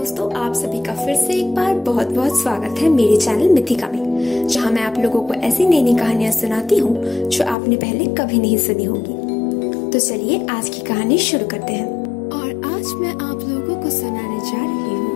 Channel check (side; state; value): right; drops out; at 7.6 s